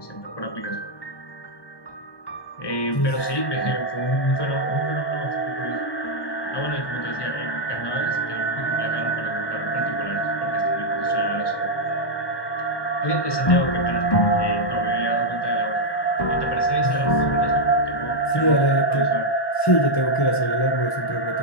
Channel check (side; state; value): right; late; 1.2 ms